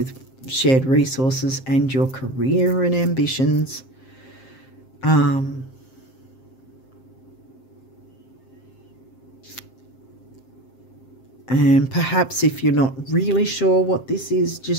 shared resources and your career and ambitions. And perhaps if you're not really sure what this is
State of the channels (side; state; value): right; late; 7.6 ms